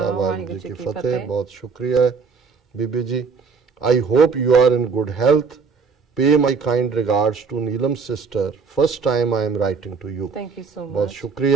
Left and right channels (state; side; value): quieter; left; 5.2 dB